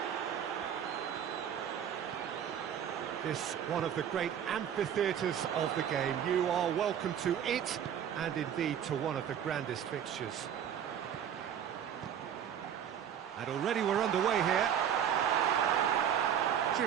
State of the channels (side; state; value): left; quieter; 9.1 dB